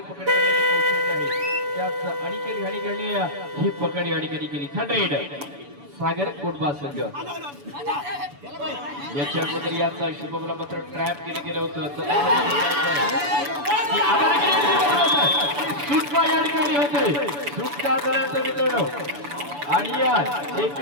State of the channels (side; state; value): left; late; 7.0 ms